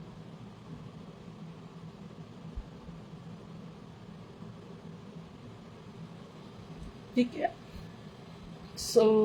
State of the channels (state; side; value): identical; both; correlation 1.00